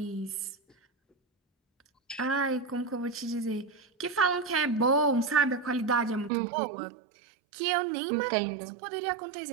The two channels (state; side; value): drops out; left; at 6.3 s